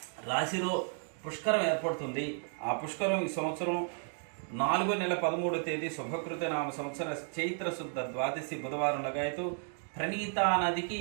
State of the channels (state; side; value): silent; left; 56 dB below the other